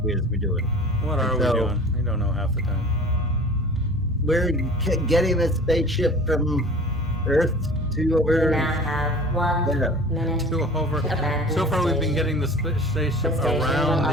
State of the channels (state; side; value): normal; both; correlation 0.41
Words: is we're doing. What are we So- doing? We don't know half the time. We're getting a spaceship from Earth to You over. now have 1 Yeah. minute. To over. Abandon So far, we've been station. getting the spaceship The station will around the